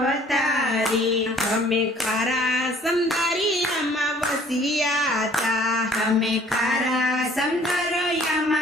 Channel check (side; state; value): both; normal; correlation 0.56